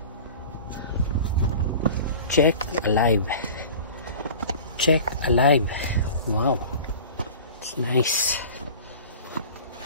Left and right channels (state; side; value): inverted; both; correlation -0.40